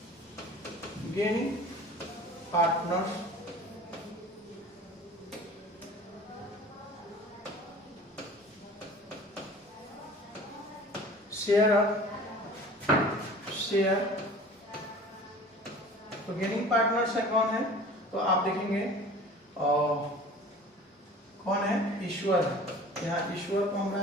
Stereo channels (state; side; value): normal; both; correlation 0.43